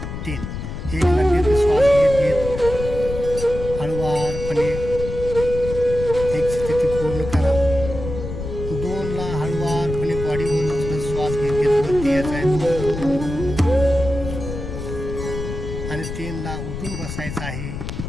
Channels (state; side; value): noise; left; rumble, 7 dB below the sound